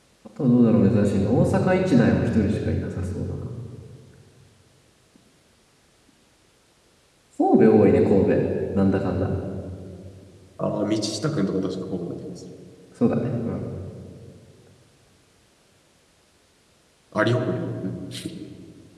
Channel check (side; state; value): both; identical; correlation 1.00